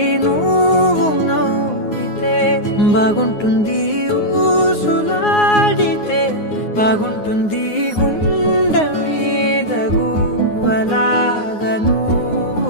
నువ్వు నవ్వితే బాగుంటుంది ఊసులాడితే బాగుంటుంది గుండె మీద గువ్వలాగా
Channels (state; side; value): late; right; 9.6 ms